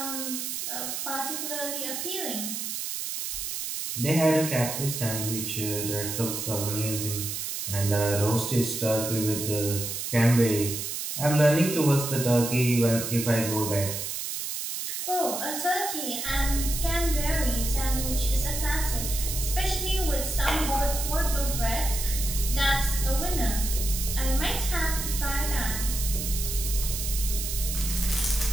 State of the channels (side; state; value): right; noise; hiss, 4 dB below the sound